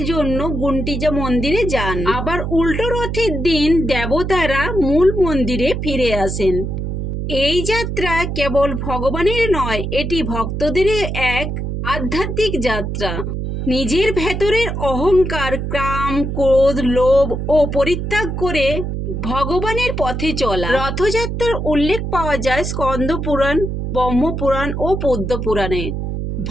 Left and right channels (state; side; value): noise; right; hum, 3 dB below the sound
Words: জন্য গুন্ডিচা মন্দিরে যান। আবার উল্টো রথের দিন দেবতারা মূল মন্দিরে ফিরে আসেন। এই যাত্রা কেবল ভগবানের নয়, এটি ভক্তদের এক আধ্যাত্মিক যাত্রা। নিজের ভেতরের অহংকার, কাম, ক্রোধ, লোভ ও পরিত্যাগ করে ভগবানের পথে চলা। রথযাত্রার উল্লেখ পাওয়া যায় স্কন্দ পুরাণ, ব্রহ্মপুরাণ ও পদ্ম পুরাণে।